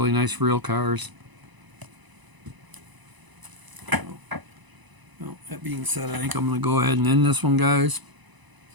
nice real cars. That being said, I think I'm going to go ahead and end this one, guys.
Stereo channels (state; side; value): late; left; 1.0 ms